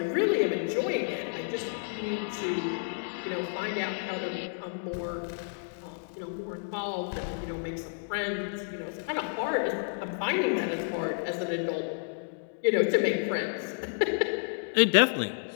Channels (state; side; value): silent; right; digital silence